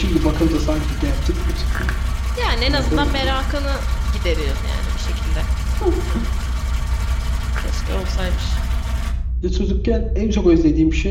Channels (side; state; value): both; identical; correlation 1.00